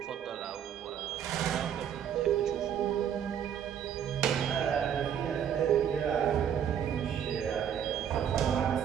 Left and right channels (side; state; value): left; quieter; 8.9 dB